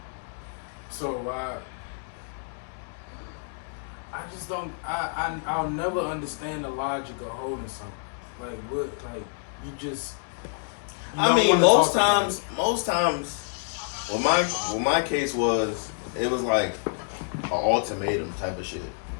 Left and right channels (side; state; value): right; silent; 60 dB below the other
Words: So I just don't. I'll never understand the logic of holding something. Like what? Like you just. I mean, most times, what my case was, it was like an ultimatum type of shit.